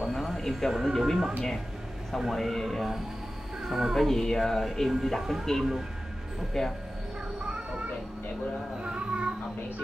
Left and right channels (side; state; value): both; normal; correlation 0.95